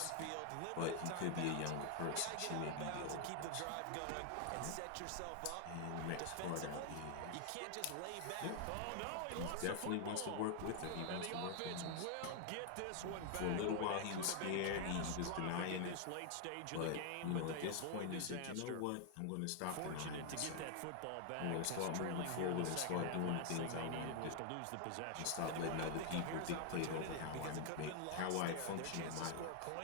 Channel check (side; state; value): both; different; correlation 0.00